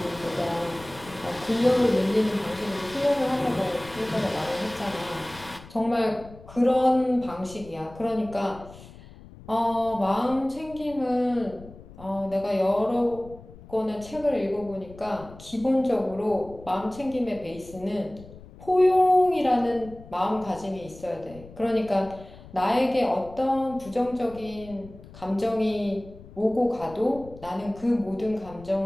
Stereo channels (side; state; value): left; noise; rumble, 19 dB below the sound